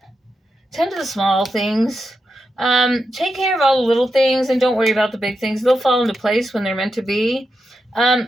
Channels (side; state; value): both; normal; correlation 0.87